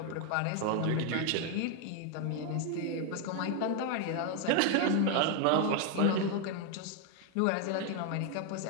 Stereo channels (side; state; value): both; different; correlation 0.00